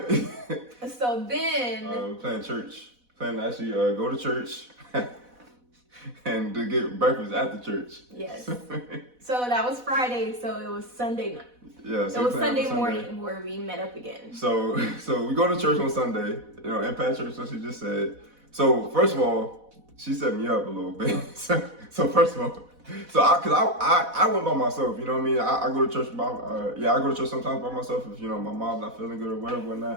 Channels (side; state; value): left; late; 4.1 ms